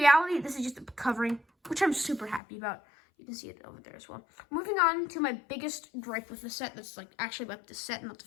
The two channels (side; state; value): right; drops out; at 2.4 s